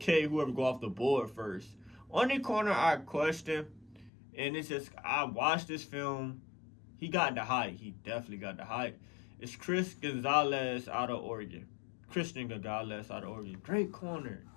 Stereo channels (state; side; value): drops out; right; at 4.1 s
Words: whoever go off the board first. Only corner I question, and it's just, I watched this film. He got the height. He definitely got the height. It's Christian Gonzalez out of Oregon. Great corner.